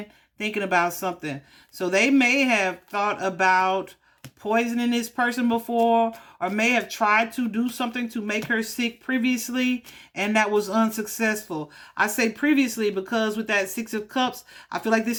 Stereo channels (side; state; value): both; identical; correlation 1.00